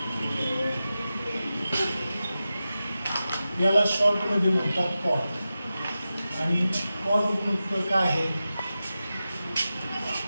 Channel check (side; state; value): both; inverted; correlation -0.93